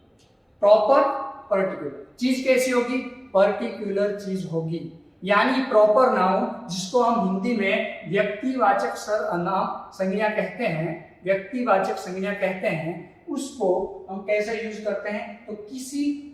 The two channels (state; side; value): identical; both; correlation 1.00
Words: प्रॉपर पर्टिकुलर चीज कैसी होगी? पर्टिकुलर चीज होगी। यानी प्रॉपर नाउन जिसको हम हिंदी में व्यक्तिवाचक सर्वनाम संज्ञा कहते हैं, व्यक्तिवाचक संज्ञा कहते हैं, उसको हम कैसे यूज करते हैं? तो किसी